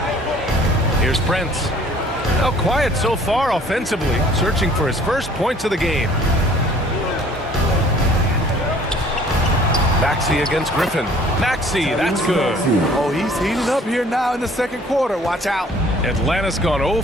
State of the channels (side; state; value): both; normal; correlation 0.54